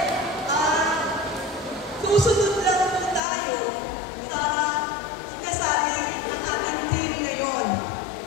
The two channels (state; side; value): drops out; right; at 3.2 s